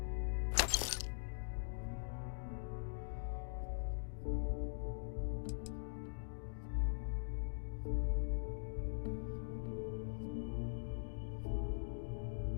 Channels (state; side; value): silent; right; digital silence